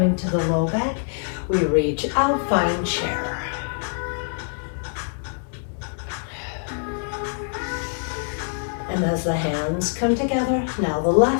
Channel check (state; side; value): silent; right; 57 dB below the other